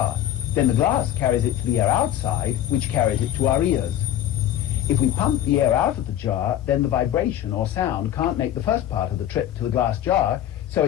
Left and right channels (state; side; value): quieter; right; 11.6 dB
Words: Then the glass carries it to the air outside, which carries it to our ears. If we pump the air out of the jar, then the vibration or sound can't make the first part of the trip to the glass jar, so